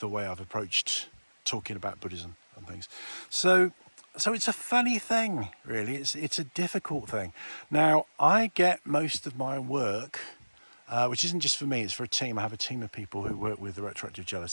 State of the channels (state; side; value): inverted; both; correlation -1.00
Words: way I've approached talking about Buddhism and things. So it's a funny thing, really. It's a difficult thing. Now, I get most of my work, which isn't just for me, it's for a team. I have a team of people who work with the retroactive